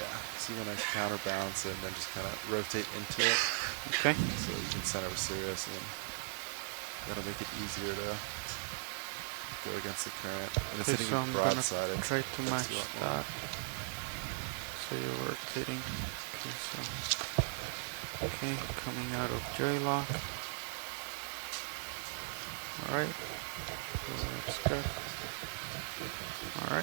so you want to counterbalance it and then just kind of rotate into it. Okay. So you can center with Sirius, and then that'll make it easier to go against the current. When it's Okay, hitting so you I'm gonna broadside, it try to match affects you a lot more. that. So you're rotating. Okay, so okay, coming out of J-lock. All right, so that's good. All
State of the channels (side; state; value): left; silent; 52 dB below the other